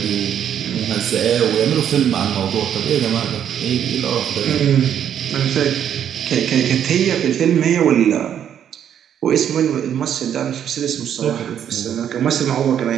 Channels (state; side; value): quieter; left; 9.4 dB